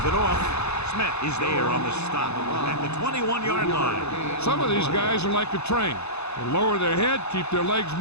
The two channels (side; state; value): right; late; 0.80 ms